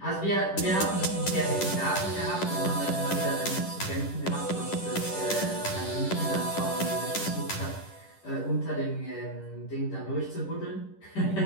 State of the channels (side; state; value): right; late; 10 ms